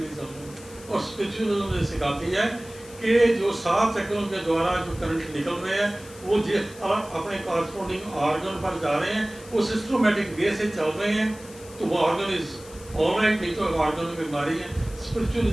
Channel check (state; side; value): noise; left; hiss, 20 dB below the sound